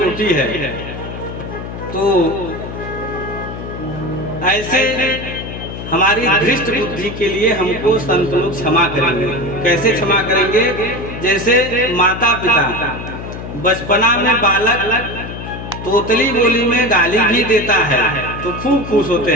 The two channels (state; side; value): noise; left; hum, 9 dB below the sound